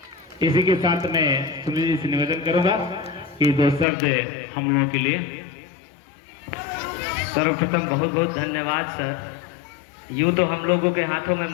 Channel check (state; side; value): drops out; right; at 3.9 s